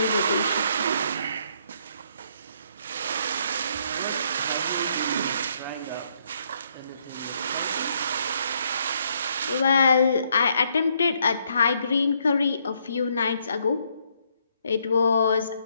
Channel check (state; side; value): inverted; both; correlation -0.71